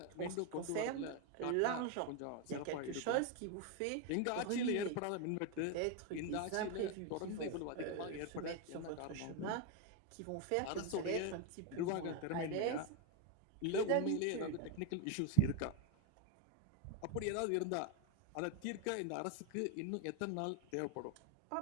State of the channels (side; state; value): both; different; correlation 0.01